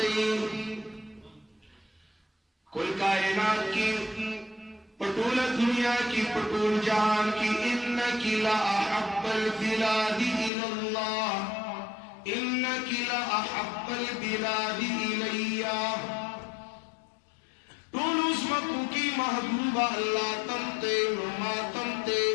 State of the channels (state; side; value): drops out; right; at 10.5 s